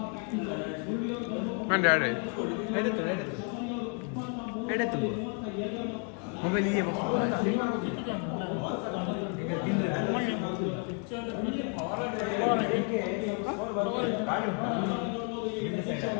ಮಂಡೆ ಆಡೆ ಎಡೆತು ಮೊಬೈಲ್ ಹೀಗೆ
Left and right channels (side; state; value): right; quieter; 39.0 dB